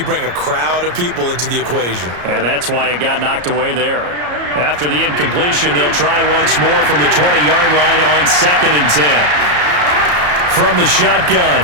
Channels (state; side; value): late; left; 34 ms